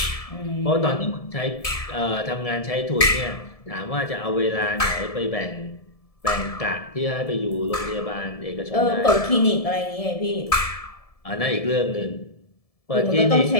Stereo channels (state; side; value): late; right; 1.7 ms